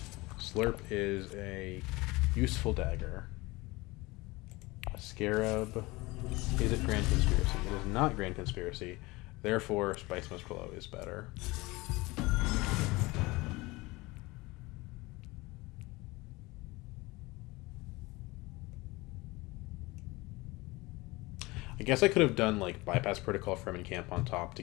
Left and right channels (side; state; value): right; quieter; 22.2 dB